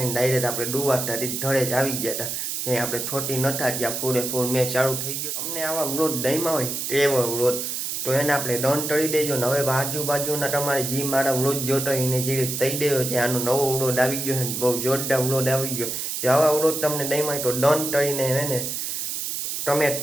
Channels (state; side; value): noise; right; hiss, 3 dB below the sound